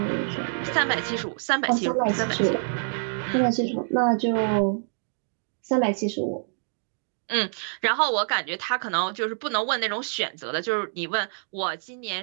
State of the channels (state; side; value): silent; left; digital silence